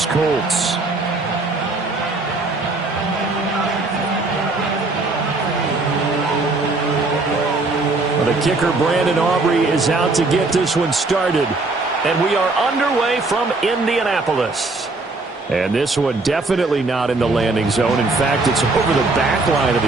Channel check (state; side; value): quieter; left; 3.4 dB